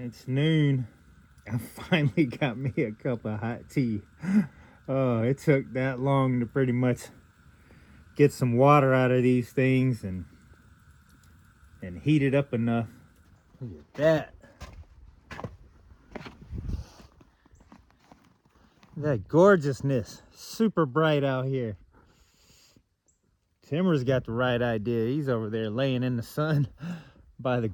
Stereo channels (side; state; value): both; identical; correlation 1.00